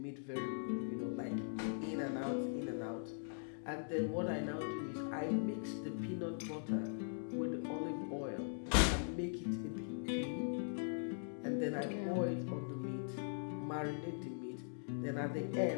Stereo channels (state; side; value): silent; right; digital silence